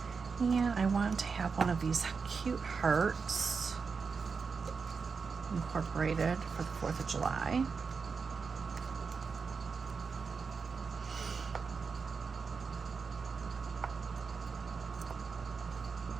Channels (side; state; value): left; quieter; 5.2 dB